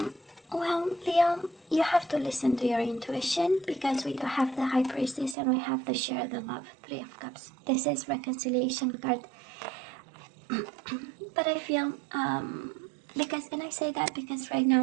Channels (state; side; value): drops out; left; at 5.4 s